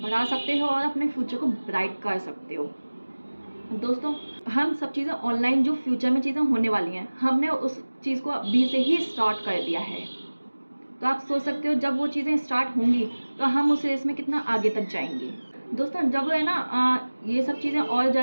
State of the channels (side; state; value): both; inverted; correlation -1.00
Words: सकते हो और अपने फ्यूचर को ब्राइट कर सकते हो। दोस्तों, हम सब चीज़ें ऑनलाइन जो फ्यूचर में चीज़ें होने वाली हैं, हमने उस चीज़ को अभी से ही स्टार्ट कर दिया है। तो आप सोच सकते हो जब वो चीज़ें स्टार्ट होंगी तो हम उस रेस में कितना आगे तक जाएंगे। दोस्तों, जब है ना ये सब चीज़ें और